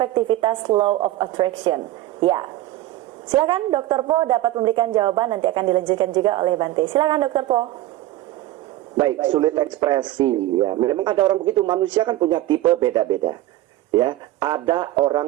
law of attraction? Ya. Silakan Dr. Po dapat memberikan jawaban, nanti akan dilanjutkan juga oleh Bante. Silakan Dr. Po. Baik, sulit ekspresi ya. Memang ada orang begitu, manusia kan punya tipe beda-beda. Ya, ada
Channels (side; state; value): left; quieter; 15.4 dB